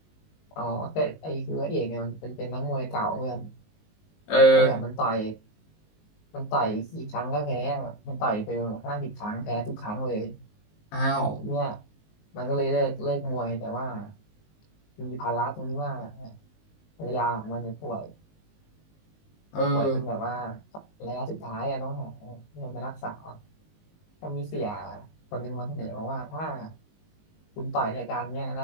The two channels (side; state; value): right; late; 19 ms